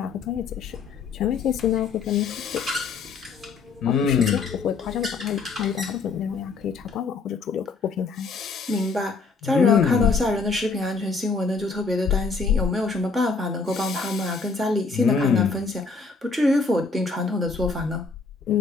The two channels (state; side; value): quieter; right; 4.4 dB